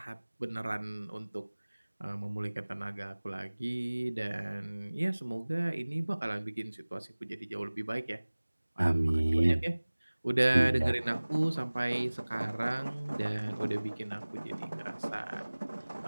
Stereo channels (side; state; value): both; inverted; correlation -1.00